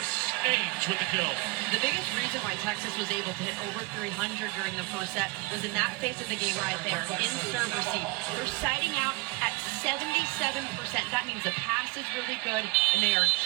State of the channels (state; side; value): quieter; left; 26.1 dB